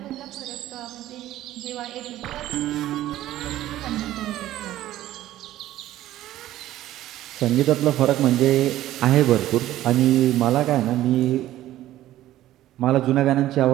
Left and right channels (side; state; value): left; quieter; 14.1 dB